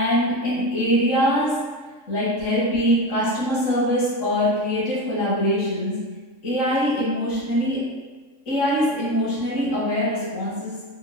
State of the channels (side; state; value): right; late; 3.6 ms